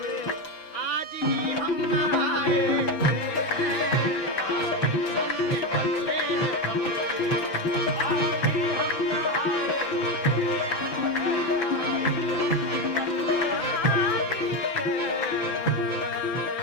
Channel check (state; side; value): late; right; 6.0 ms